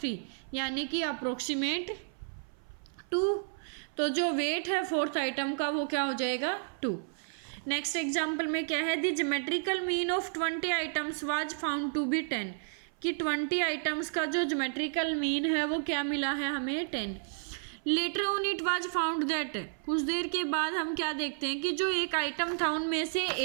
यानी कि अप्रोक्सीमेट 2। तो जो वेट है फोर्थ आइटम का वो क्या हो जाएगा 2। नेक्स्ट एग्जाम्पल में क्या है the geometrical mean of 20 items was found to be 10, कि 20 आइटम्स का जो ज्योमेट्रिकल मीन है वो क्या मिला है हमें 10। Later on it was found that, कुछ देर के बाद हम क्या देखते हैं कि जो एक आइटम था उनमें से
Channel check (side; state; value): left; silent; 55 dB below the other